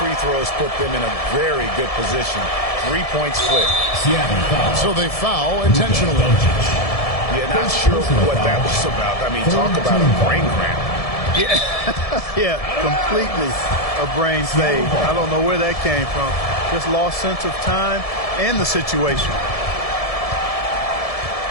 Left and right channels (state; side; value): late; right; 1.7 ms